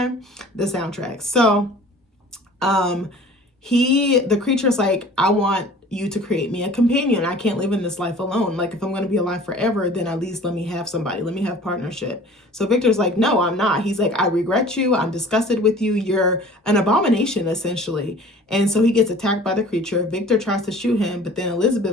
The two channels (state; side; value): normal; both; correlation 0.46